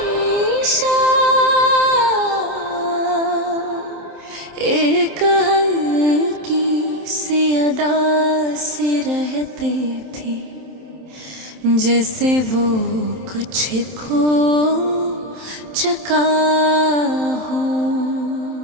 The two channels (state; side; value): late; left; 27 ms